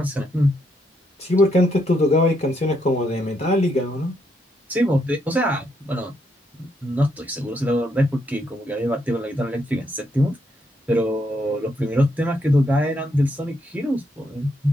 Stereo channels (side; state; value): both; normal; correlation 0.76